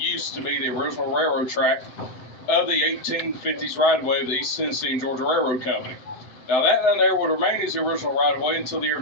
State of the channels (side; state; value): right; late; 7.8 ms